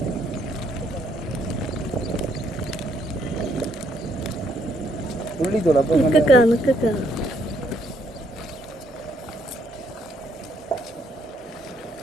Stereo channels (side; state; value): both; normal; correlation 0.70